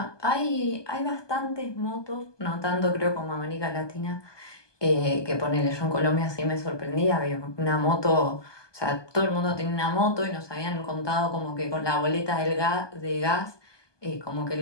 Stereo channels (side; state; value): right; late; 1.2 ms